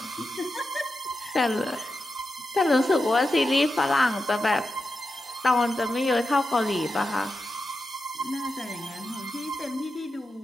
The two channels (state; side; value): normal; both; correlation 0.89